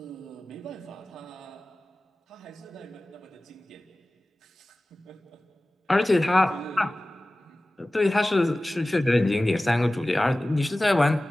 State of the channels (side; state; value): both; normal; correlation 0.97